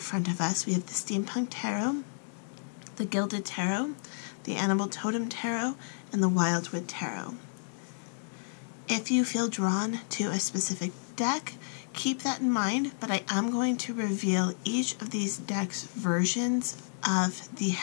of us. We have the Steampunk Tarot, the Gilded Tarot, the Totem Tarot, and the Wildwood Tarot. If you feel drawn to a specific deck, keep that in mind, but I am going to reveal each of these decks' versions of the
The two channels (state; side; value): silent; right; digital silence